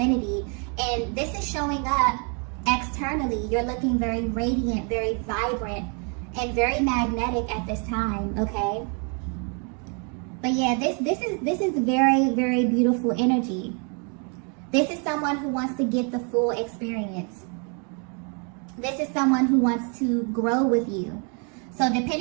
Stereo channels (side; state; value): left; quieter; 37.6 dB